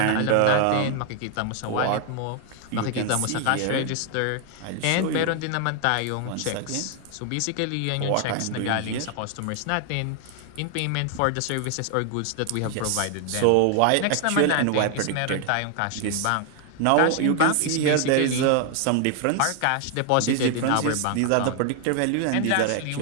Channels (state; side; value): different; both; correlation 0.00